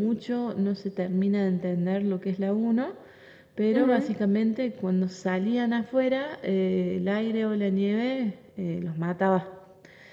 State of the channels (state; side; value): identical; both; correlation 1.00